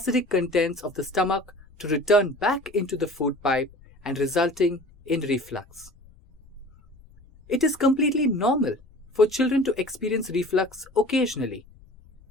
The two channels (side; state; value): left; noise; rumble, 26 dB below the sound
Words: contents of the stomach to return back into the food pipe and resulting in reflux. It is completely normal for children to experience reflux occasionally.